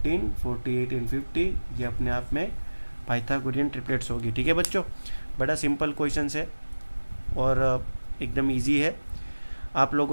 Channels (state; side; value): inverted; both; correlation -1.00